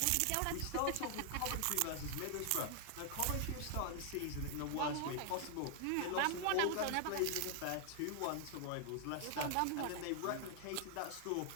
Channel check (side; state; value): both; different; correlation 0.00